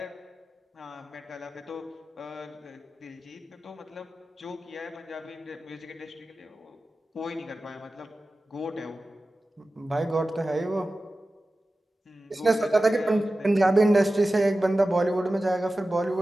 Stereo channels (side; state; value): both; normal; correlation 0.95